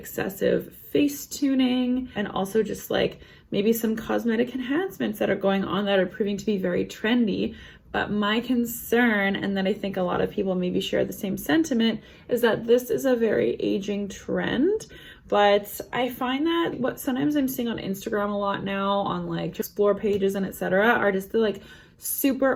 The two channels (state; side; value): identical; both; correlation 1.00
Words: face tuning, and also just like maybe some cosmetic enhancements that are going on that are proving to be very trendy. But my concern, and that I think a lot of people maybe share the same sentiment, is that this is a very aging trend. But I find that what sometimes I'm seeing on Instagram a lot now on like explore pages and etc. are just the like